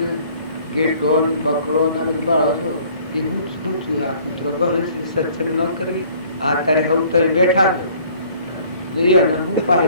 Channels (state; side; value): inverted; both; correlation -0.56